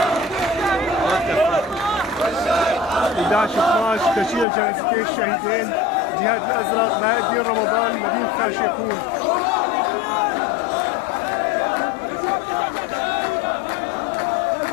11 تشييع جنازتين الشهيدين جهاد الازرق بهاء الدين رمضان مدينه خان شيخون.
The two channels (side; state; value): right; drops out; at 4.5 s